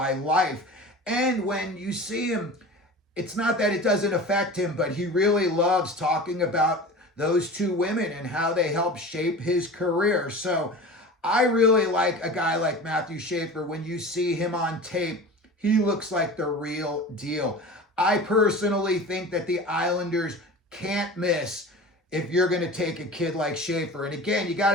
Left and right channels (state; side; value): normal; both; correlation 0.35